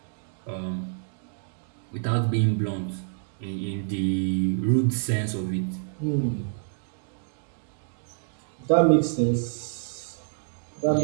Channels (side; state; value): left; silent; digital silence